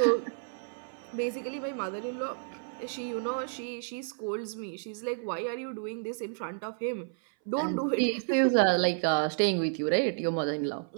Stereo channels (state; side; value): silent; left; 57 dB below the other